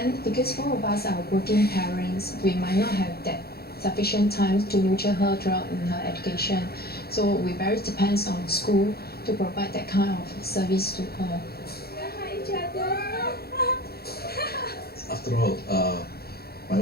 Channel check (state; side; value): late; right; 0.46 ms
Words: because 4 of us are working parents, we might not have that sufficient time to nurture her throughout in her education. So we very depends on school to provide that kind of service to her. After all, my